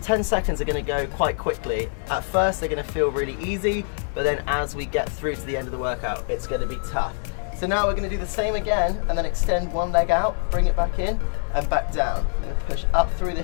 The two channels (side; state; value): right; silent; 62 dB below the other